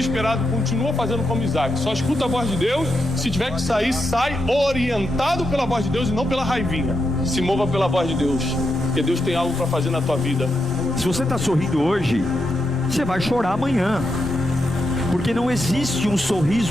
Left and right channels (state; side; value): normal; both; correlation 0.84